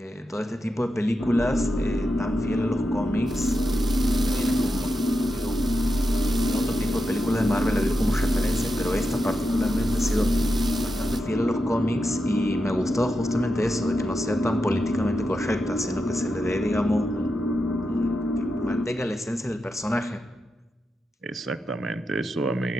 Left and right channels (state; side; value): normal; both; correlation 0.87